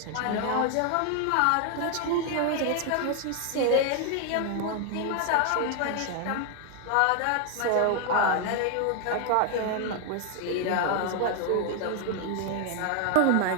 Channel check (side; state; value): both; different; correlation 0.00